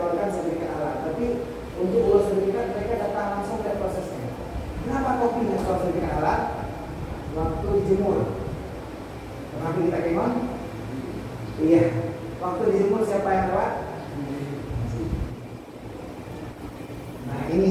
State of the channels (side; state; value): both; identical; correlation 1.00